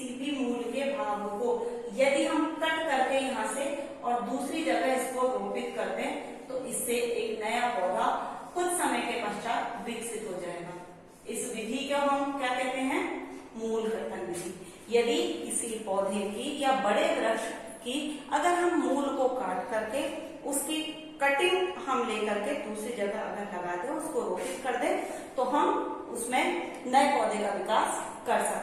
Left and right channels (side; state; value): both; identical; correlation 1.00